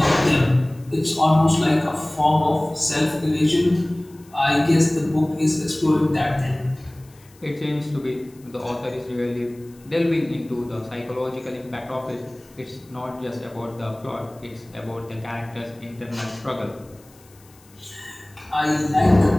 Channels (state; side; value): noise; left; hiss, 28 dB below the sound